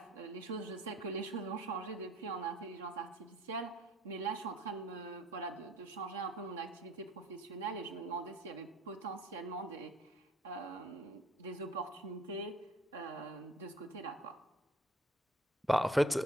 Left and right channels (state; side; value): normal; both; correlation 0.56